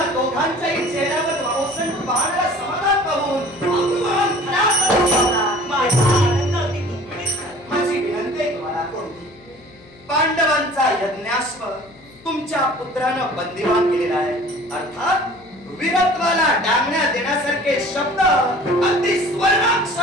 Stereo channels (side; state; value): left; noise; hum, 25 dB below the sound